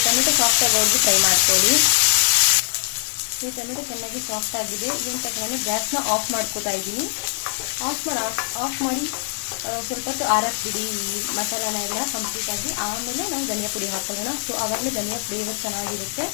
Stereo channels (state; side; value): silent; right; digital silence